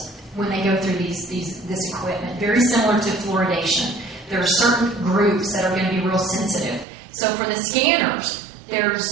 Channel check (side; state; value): left; drops out; at 6.9 s